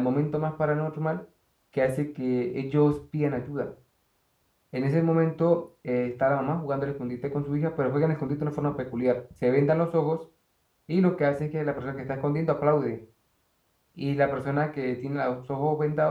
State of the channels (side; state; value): both; identical; correlation 1.00